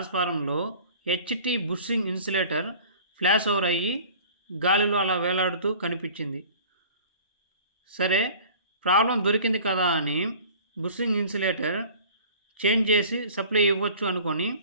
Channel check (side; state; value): both; inverted; correlation -0.45